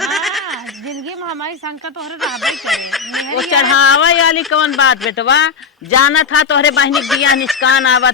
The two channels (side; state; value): right; quieter; 5.9 dB